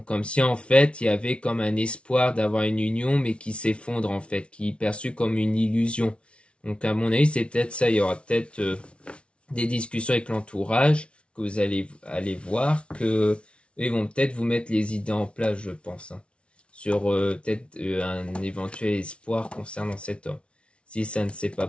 si en fait il y avait comme un espoir d'avoir une union, mais qui s'effondre en fait, qui est perçu comme une illusion. Donc à mon avis c'est peut-être ça, il y aura peut-être des discussions avec l'entourage que vous allez voir, que ils vont peut-être vous mettre les idées en place, je pense, hein, sur peut-être un éventuel espoir concernant cet homme. Si ça ne s'est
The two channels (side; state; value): right; late; 0.059 ms